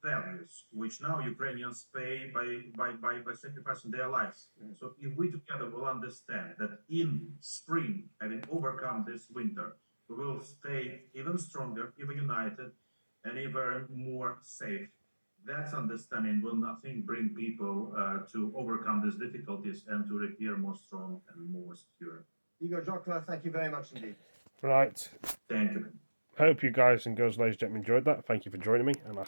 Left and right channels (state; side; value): inverted; both; correlation -1.00